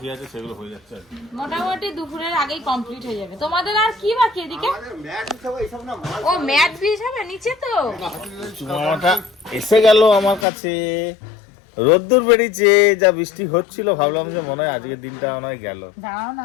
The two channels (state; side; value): drops out; right; at 10.5 s